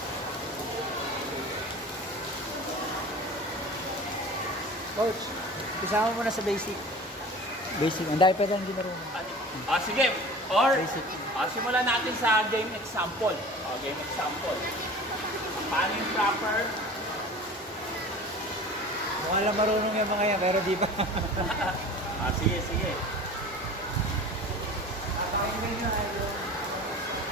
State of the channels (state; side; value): normal; both; correlation 0.39